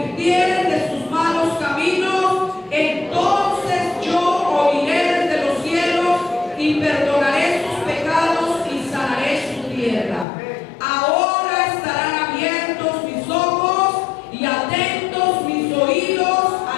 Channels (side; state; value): right; drops out; at 10.2 s